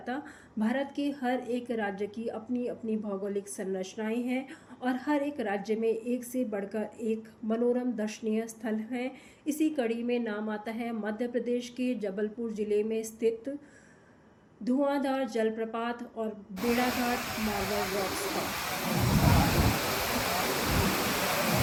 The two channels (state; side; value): identical; both; correlation 1.00